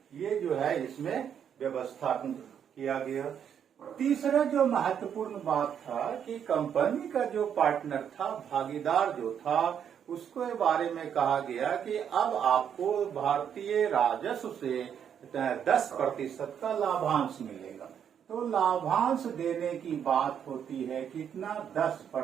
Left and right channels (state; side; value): quieter; left; 8.4 dB